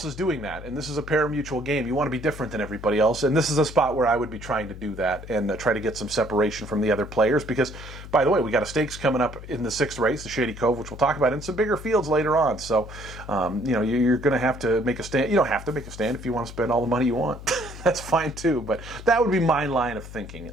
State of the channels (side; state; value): left; noise; hum, 13 dB below the sound